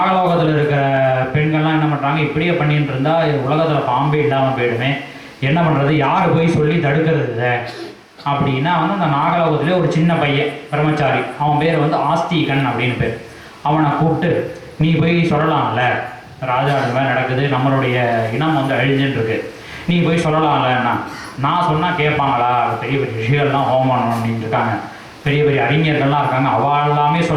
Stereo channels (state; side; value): identical; both; correlation 1.00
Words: இருக்கிற பெண்கள்லாம் என்ன பண்ணுறாங்க, இப்படியே பண்ணிட்டு இருந்தால் உலகத்தில் பாம்பே இல்லாமல் போயிடுமே, என்ன பண்ணுறது, யார் போய் சொல்லி தடுக்கிறது அப்படின்னா வந்து அந்த நாகலோகத்திலே ஒரு சின்ன பையன் பிரம்மச்சாரி, அவன் பேர் வந்து ஆஸ்திகன் அப்படின்னு பேர். அவனை கூப்பிட்டு நீ போய் சொல்லலாம்ல, ராஜா அது மாதிரி நடக்குது, நம்மளுடைய இனம் வந்து அழிஞ்சுட்டுருக்கு, நீ போய் சொல்லலாம்லன்னா. நான் சொன்னால் கேட்பாங்களா, பெரிய பெரிய ரிஷிகள்லாம் ஹோமம் பண்ணிட்டு இருக்காங்க, பெரிய பெரிய அறிஞர்கள்லாம் இருக்காங்க, அவள் எல்லாமே